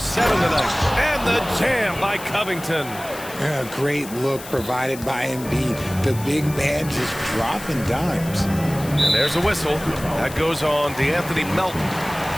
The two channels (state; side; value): noise; left; hiss, 14 dB below the sound